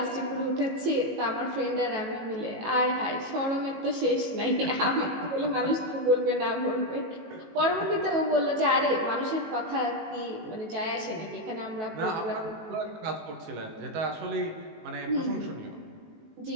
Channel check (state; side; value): late; left; 18 ms